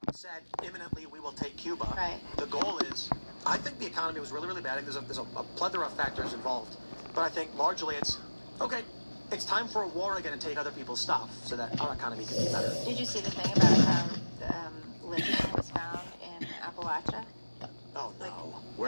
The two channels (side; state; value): both; inverted; correlation -1.00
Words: said imminently we will take Cuba. Right. The goal is, I think the economy was really, really bad. There's a plethora of factors involved, but I think largely it's okay. It's time for a war again and take other people's stuff so that our economy can be better. Did you see the thing about how lithium was found in Appalachia? Oh no!